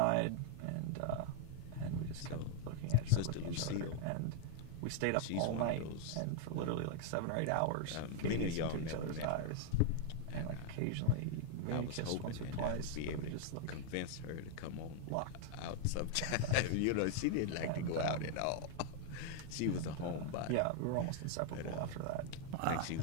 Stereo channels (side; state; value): both; different; correlation 0.00